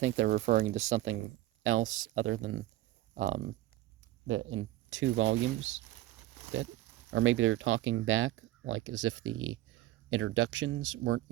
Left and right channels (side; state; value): left; quieter; 15.6 dB